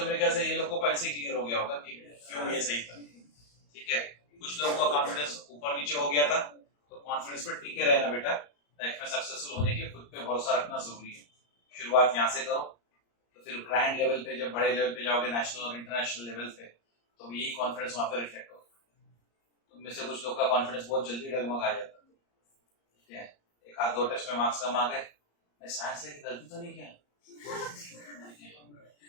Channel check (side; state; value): right; late; 34 ms